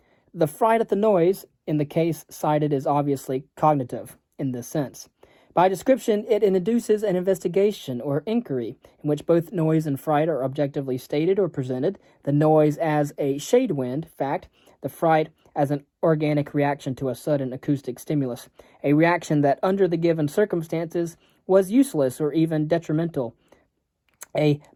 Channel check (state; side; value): identical; both; correlation 1.00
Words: The fright at the noise, in the case cited, is obviously cognitive in this sense. By description, it induces an investigation or inquiry in which both noise and fright are objectively stated or presented, the noise as a shade wind fact, the fright as an organic reaction to a sudden acoustic stimulus, a reaction that under the given circumstances was useless or even detrimental, a